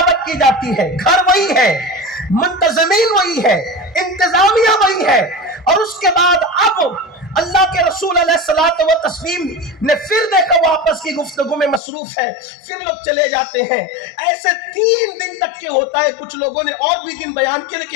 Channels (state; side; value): drops out; right; at 11.8 s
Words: کی جاتی ہے، گھر وہی ہے، منتظمین وہی ہے، انتظامیہ وہی ہے، اور اس کے بعد اب اللہ کے رسول علیہ الصلوۃ والتسلیم نے پھر دیکھا وہ آپس کی گفتگو میں مصروف ہے، پھر لوگ چلے جاتے ہیں۔ ایسے 3 دن تک کے ہوتا ہے، کچھ لوگوں نے اور بھی دن بیان کیے